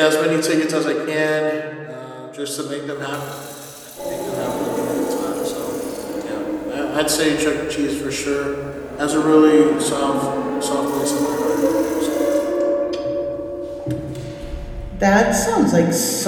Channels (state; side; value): identical; both; correlation 1.00